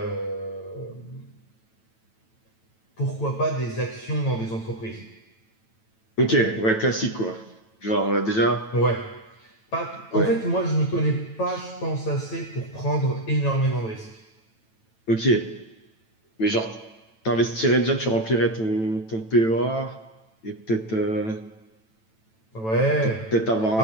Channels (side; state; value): right; late; 9.1 ms